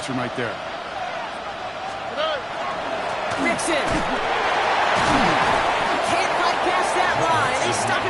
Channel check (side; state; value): both; identical; correlation 1.00